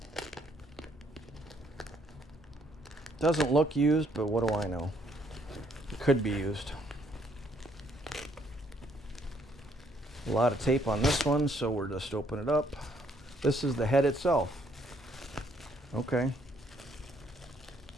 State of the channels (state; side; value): normal; both; correlation 0.68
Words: Doesn't look used, but what do I know? It could be used. A lot of tape on this one, so we're just open it up. This is the head itself. Okay.